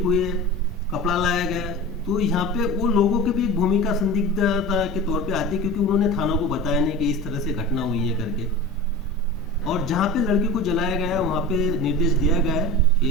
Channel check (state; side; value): normal; both; correlation 0.32